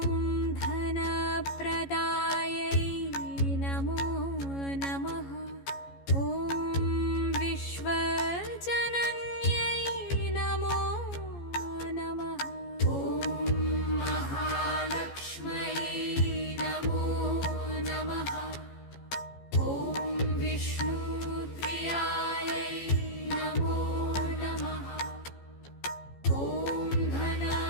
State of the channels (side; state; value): right; late; 14 ms